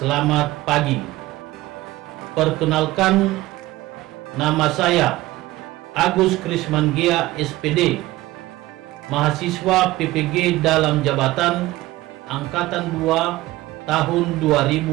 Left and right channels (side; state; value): left; quieter; 17.8 dB